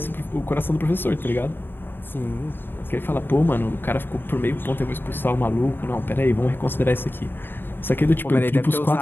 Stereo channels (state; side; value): late; right; 0.097 ms